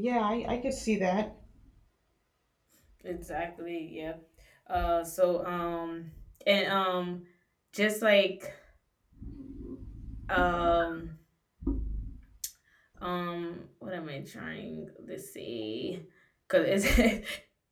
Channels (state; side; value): identical; both; correlation 1.00